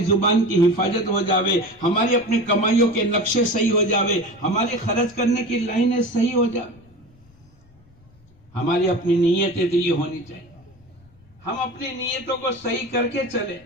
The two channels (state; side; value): noise; left; rumble, 29 dB below the sound